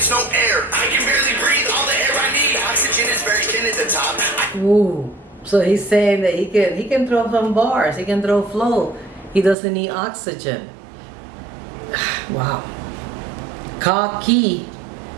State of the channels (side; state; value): left; drops out; at 9.6 s